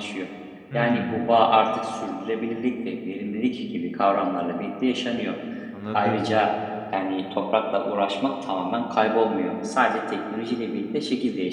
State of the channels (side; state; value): both; identical; correlation 1.00